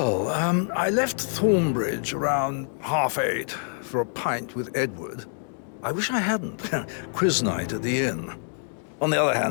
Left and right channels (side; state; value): right; silent; 61 dB below the other